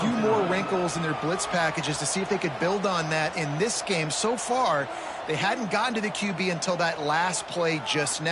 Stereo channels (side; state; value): both; identical; correlation 1.00